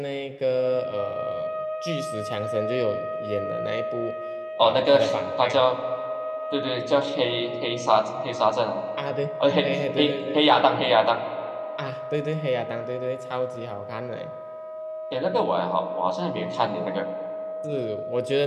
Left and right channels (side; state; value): both; identical; correlation 1.00